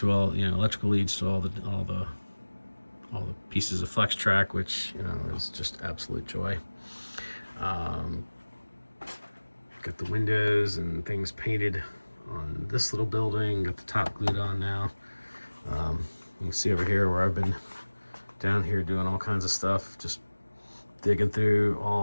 all, you know, electrical leads to all the pieces of flex track, which, you know, is just absolute joy. Got the windows and things painted on this little building, got the top glued on now. You can see over here where I've been down here doing all kinds of stuff, just digging through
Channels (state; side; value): inverted; both; correlation -1.00